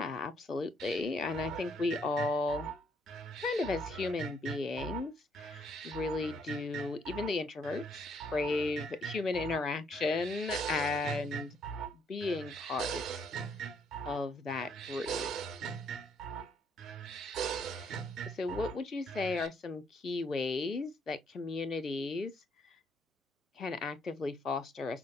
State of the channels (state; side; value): normal; both; correlation 0.69